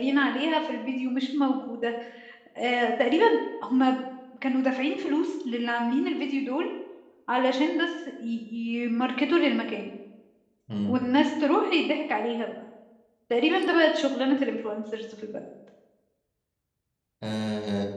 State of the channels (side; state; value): both; identical; correlation 1.00